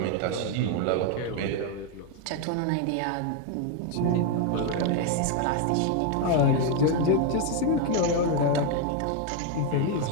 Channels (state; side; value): different; both; correlation 0.01